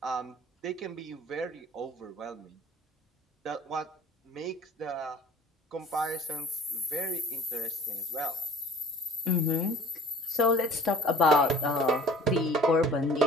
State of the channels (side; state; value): both; normal; correlation 0.45